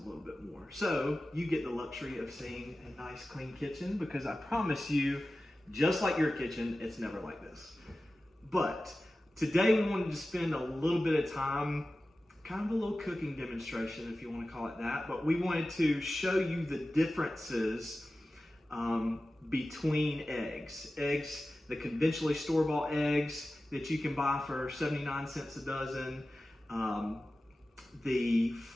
little bit more. So you get the luxury of seeing a nice clean kitchen, because I promise you, just like your kitchen, it's never like this. But today we wanted to spend a little bit of time, kind of a little cooking demonstration, if you want to call it that, but we wanted to show you the differences between eggs. Eggs, the conventionally store-bought eggs that you can buy for 79 cents a dozen, the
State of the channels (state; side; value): normal; both; correlation 0.95